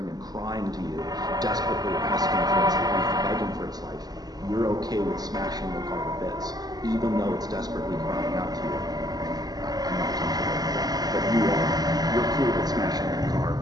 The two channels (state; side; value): late; left; 0.19 ms